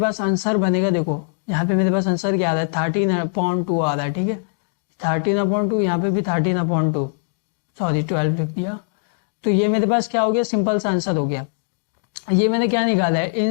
आंसर बनेगा, देखो यहाँ पे मेरे पास आंसर क्या आ रहा है 13/2 आ रहा है, ठीक है। 13/2, यहाँ पे भी 13/2, सॉरी 12 लिख दिया। तो ये मेरे पास क्या हो गया, सिंपल सा आंसर हो गया। ये मैंने क्या निकाला है,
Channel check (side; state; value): right; silent; 59 dB below the other